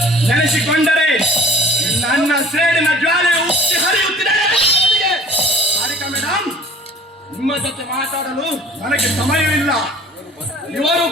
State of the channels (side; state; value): both; normal; correlation 0.49